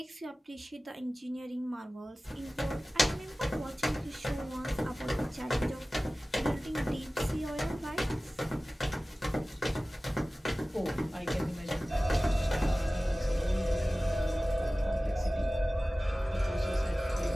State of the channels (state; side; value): normal; both; correlation 0.97